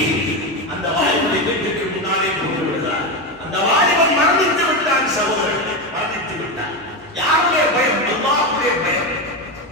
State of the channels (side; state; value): both; normal; correlation 0.14